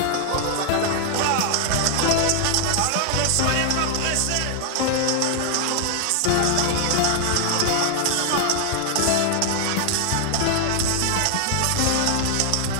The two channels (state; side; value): different; both; correlation 0.00